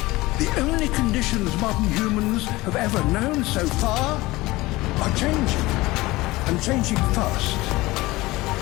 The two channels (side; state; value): right; quieter; 20.1 dB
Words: The only conditions modern humans have ever known so far are changing, and changing fast.